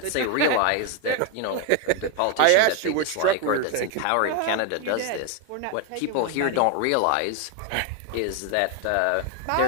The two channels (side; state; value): both; different; correlation 0.01